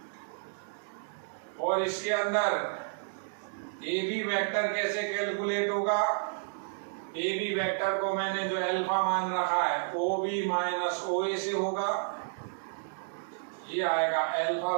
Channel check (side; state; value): left; silent; digital silence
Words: और इसके अंदर ए बी वेक्टर कैसे कैलकुलेट होगा? ए बी वेक्टर को मैंने जो अल्फा मान रखा है ओ बी माइनस ओ ए से होगा, ये आएगा अल्फा